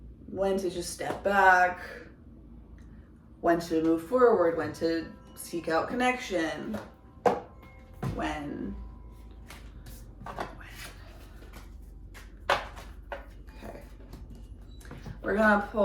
When to just step back, when to move forward, when to seek out connection, when. Okay. We're gonna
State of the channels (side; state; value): both; identical; correlation 1.00